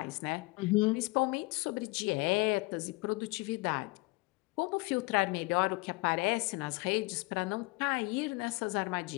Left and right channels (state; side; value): quieter; right; 25.3 dB